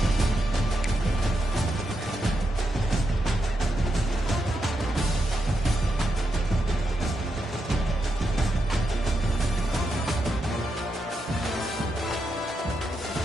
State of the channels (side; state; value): both; normal; correlation 0.84